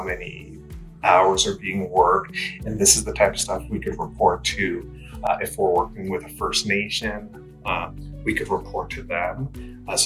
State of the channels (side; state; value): both; identical; correlation 1.00